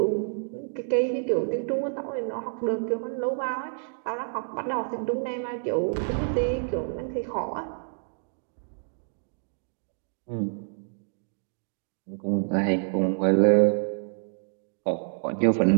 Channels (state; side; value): silent; left; digital silence